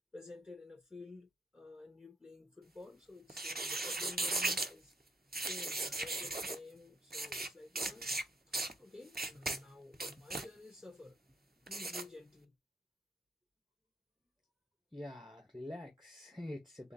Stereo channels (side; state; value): both; normal; correlation 0.68